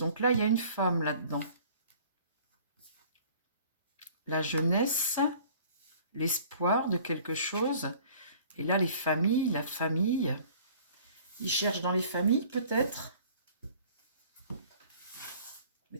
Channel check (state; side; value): inverted; both; correlation -0.50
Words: là, il y a une femme là-dedans. La jeunesse, l'espoir de quelque chose. Et là, les familles, la famille. Ils cherchent dans les familles, peut-être.